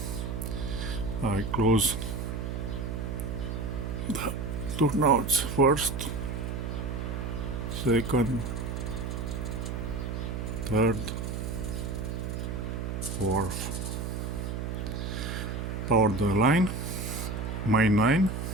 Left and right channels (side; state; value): right; noise; hum, 4 dB below the sound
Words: I close the turnouts first, second, third, fourth. Power the line, main 9,